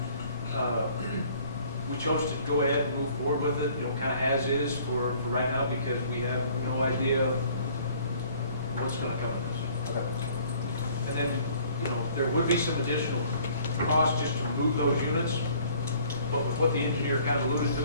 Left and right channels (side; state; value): both; inverted; correlation -0.56